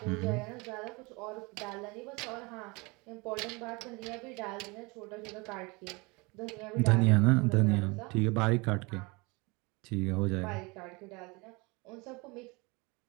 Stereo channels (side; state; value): left; quieter; 26.8 dB